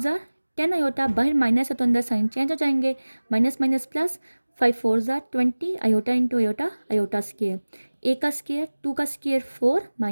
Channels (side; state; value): both; inverted; correlation -1.00